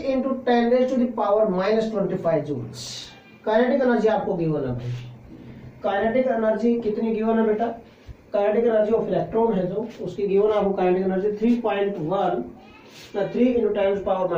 × 10⁻⁻25 joules. Kinetic energy आपको गिवन है भाई, काइनेटिक एनर्जी कितनी गिवन है बेटा, काइनेटिक एनर्जी ऑफ इलेक्ट्रॉन है जो, उसकी गिवन आपको काइनेटिक एनर्जी 3 ×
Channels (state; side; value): identical; both; correlation 1.00